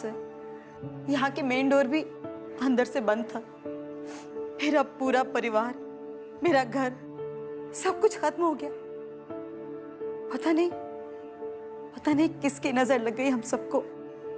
यहाँ के मेन डोर भी अंदर से बंद था। फिर अब पूरा परिवार मेरा घर, सब कुछ खत्म हो गया। पता नहीं किसकी नजर लग गई हम सबको।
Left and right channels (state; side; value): identical; both; correlation 1.00